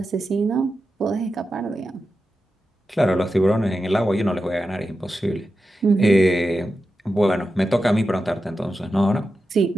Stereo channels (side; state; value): both; normal; correlation 0.90